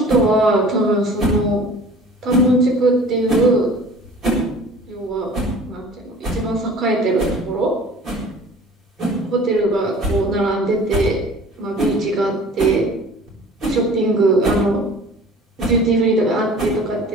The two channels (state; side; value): normal; both; correlation 0.46